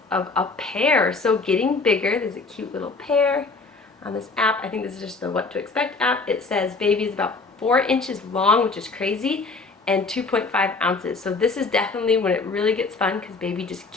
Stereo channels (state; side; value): quieter; right; 3.9 dB